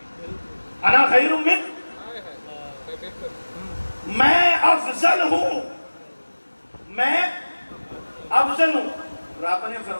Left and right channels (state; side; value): inverted; both; correlation -1.00